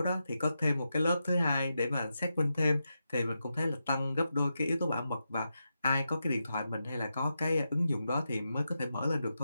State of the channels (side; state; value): both; inverted; correlation -0.88